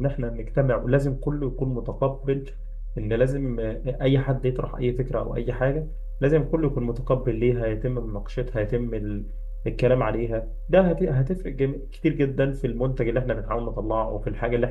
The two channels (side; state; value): both; identical; correlation 1.00